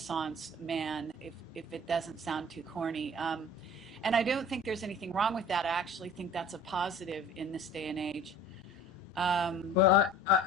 man, if it doesn't sound too corny. And I don't think there's anything wrong with that. I actually think that's a positive in this day and age. Well,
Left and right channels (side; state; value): both; normal; correlation 0.45